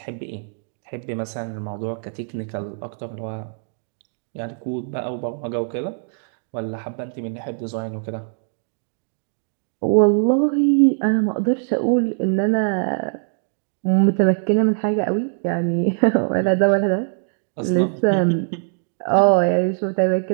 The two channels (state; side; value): silent; left; 64 dB below the other